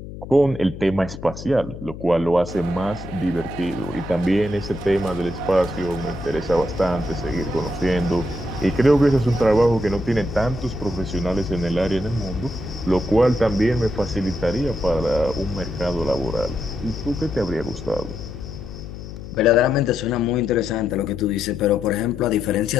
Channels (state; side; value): noise; left; hum, 12 dB below the sound